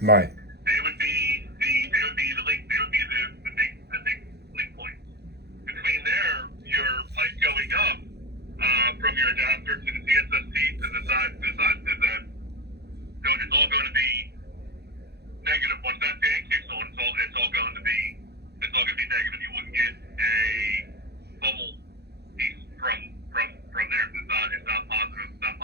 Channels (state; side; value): late; left; 0.48 ms